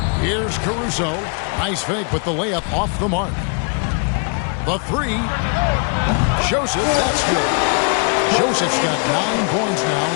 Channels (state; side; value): quieter; right; 38.2 dB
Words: Here's Caruso. Nice fake, but the layup off the mark. The 3. Joseph, that's good. Joseph's got 9 points now